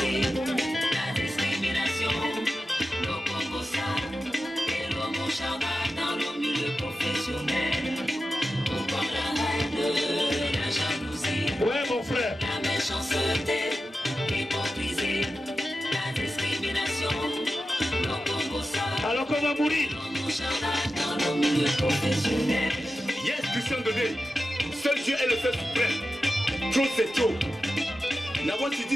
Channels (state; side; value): normal; both; correlation 0.92